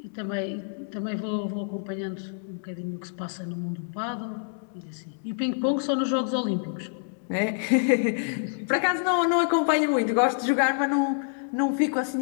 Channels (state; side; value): silent; right; digital silence